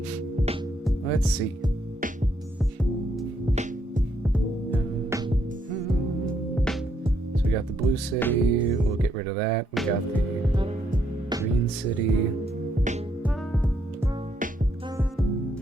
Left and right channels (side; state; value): both; normal; correlation 0.74